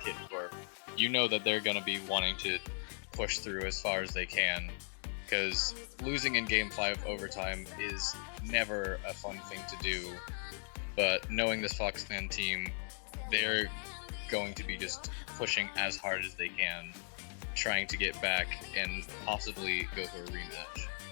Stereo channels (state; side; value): silent; right; 53 dB below the other